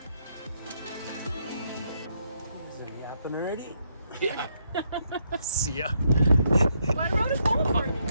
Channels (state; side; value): inverted; both; correlation -0.76